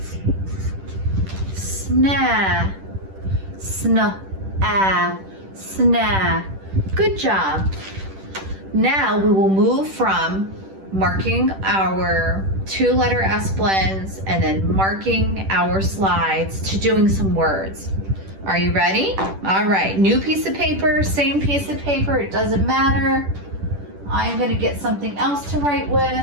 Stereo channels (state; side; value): late; left; 10 ms